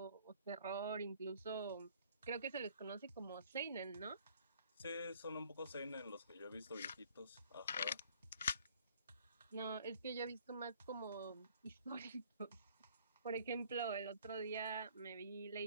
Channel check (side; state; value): both; inverted; correlation -0.57